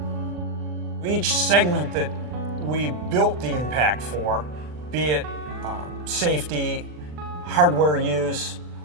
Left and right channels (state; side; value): late; left; 40 ms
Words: Each segment that we built the M-Pact for, be it safety, hardware use,